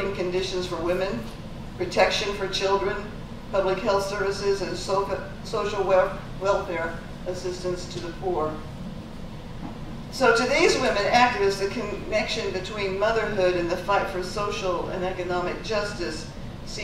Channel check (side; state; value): both; identical; correlation 1.00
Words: conditions for women, protection for children, public health services, and social welfare assistance to the poor. So to these women activists, the connection between motherhood and the fight for social and economic justice